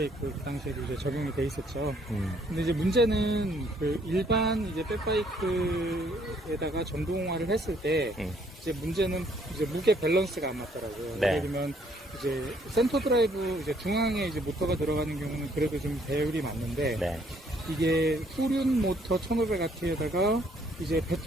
그 당시에도 이제 적용이 돼 있었죠. 음. 근데 이제 문제는 그 일반 이제 백바이크에다가 전동화를 했을 때 이제 문제는 이제 무게 밸런스가 안 맞더라고요. 네. 예를 들면 이제 센터 드라이브 이제 중앙에 이제 모터가 들어가는 경우는 그래도 좀 배율이 맞는데 네. 이게 후륜 모터 1500W에다가 이제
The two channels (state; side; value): normal; both; correlation 0.65